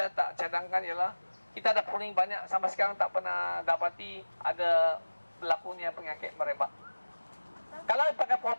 tak cadangkan ialah kita ada pruning banyak, sampai sekarang tak pernah dapati ada berlakunya penyakit merebak. Kalau pakai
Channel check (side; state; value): both; inverted; correlation -1.00